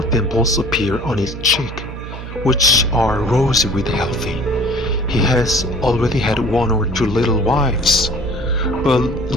dimples appear on his cheek, which are rosy with healthy. He has already had one or two little wives, but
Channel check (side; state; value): right; noise; hum, 10 dB below the sound